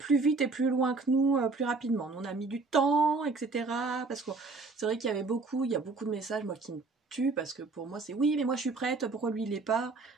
vite et plus loin que nous, plus rapidement. Nous, on a mis du temps, etc. Parce que c'est vrai qu'il y a beaucoup de messages moi qui me tuent, parce que pour moi c'est oui mais moi je suis prête, pourquoi lui il l'est pas?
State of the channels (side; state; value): left; quieter; 3.8 dB